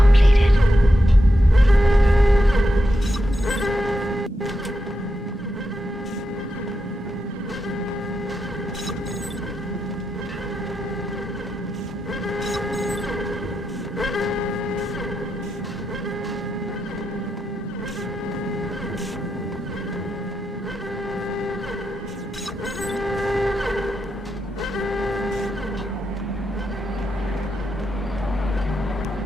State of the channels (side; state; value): both; normal; correlation 0.85